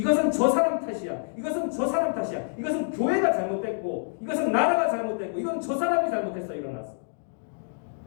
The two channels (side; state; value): right; silent; digital silence